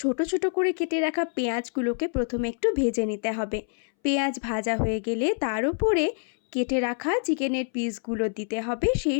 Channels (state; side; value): silent; right; 61 dB below the other